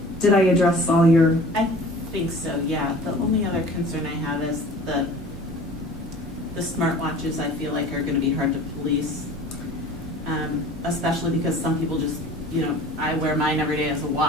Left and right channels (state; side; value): normal; both; correlation 0.44